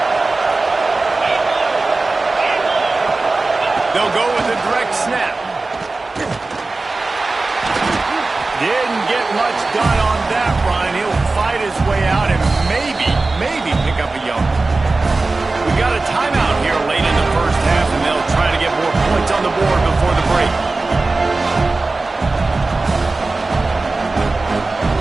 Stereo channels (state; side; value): quieter; left; 3.4 dB